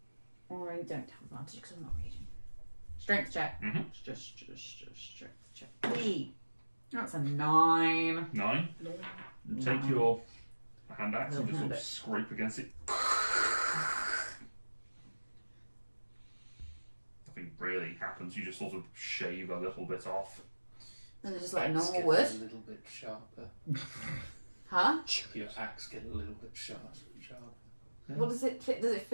Or I don't have advantage because I'm not reading. Strength check. Mhm. Just strength check. Wee. That's a 9. 9. Take Nine. your hand axe and Little just sort hand of axe. scrape against it. Nothing really happens. You just sort of shave a little bit off. Is it just like a Axe normal get wood? a little bit sharper. Huh? Your axe get a little bit sharper. What does it fit? Does it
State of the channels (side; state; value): both; inverted; correlation -1.00